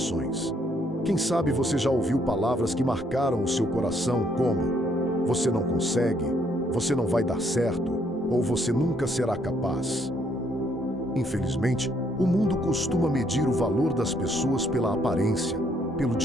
Quem sabe você já ouviu palavras que marcaram o seu coração como: você não consegue, você não vai dar certo, ou você nunca será capaz. Infelizmente, o mundo costuma medir o valor das pessoas pela aparência, pelo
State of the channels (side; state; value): both; normal; correlation 0.69